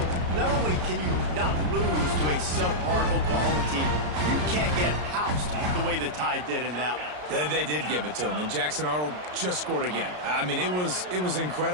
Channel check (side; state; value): left; late; 33 ms